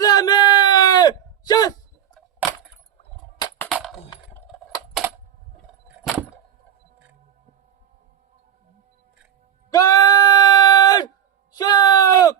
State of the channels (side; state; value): left; quieter; 9.4 dB